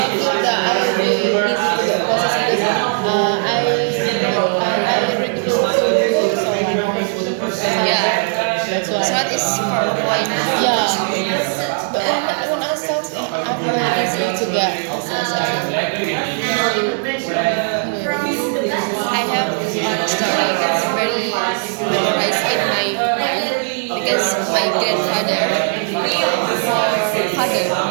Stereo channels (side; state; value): left; silent; 56 dB below the other